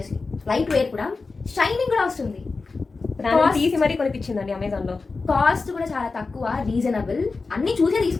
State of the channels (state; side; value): quieter; right; 4.1 dB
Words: లైట్ వేర్ కూడా, షైనింగ్ కూడా వస్తుంది. తీసి మరీ కొనిపించిందండి అమెజాన్లో. కాస్ట్ కూడా చాలా తక్కువ, రీజనబుల్. అన్నీ చూసే